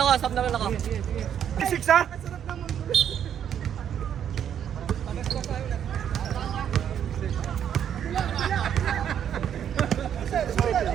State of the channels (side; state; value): left; quieter; 9.2 dB